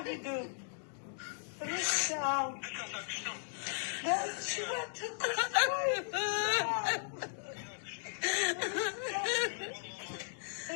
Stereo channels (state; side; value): silent; right; digital silence